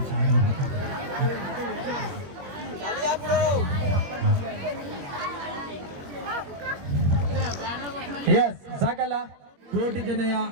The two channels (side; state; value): left; late; 21 ms